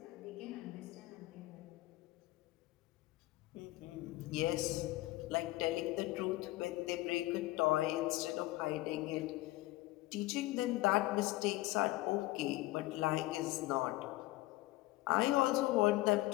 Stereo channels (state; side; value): quieter; right; 18.7 dB